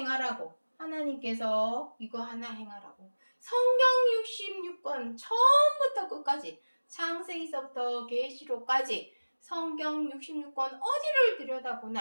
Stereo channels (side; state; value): both; inverted; correlation -1.00